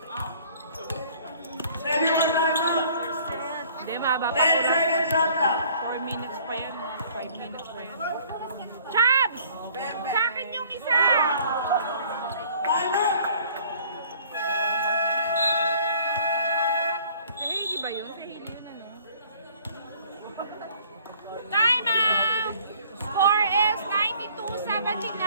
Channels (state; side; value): inverted; both; correlation -0.55